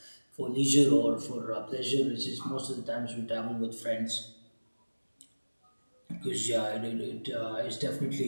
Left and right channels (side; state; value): both; inverted; correlation -1.00